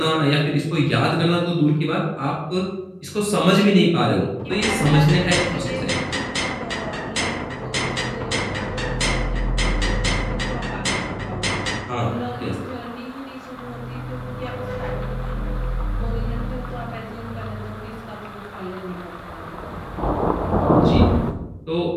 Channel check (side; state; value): both; identical; correlation 1.00